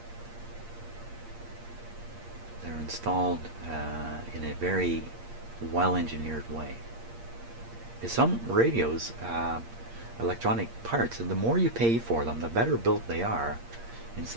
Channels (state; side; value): late; left; 8.6 ms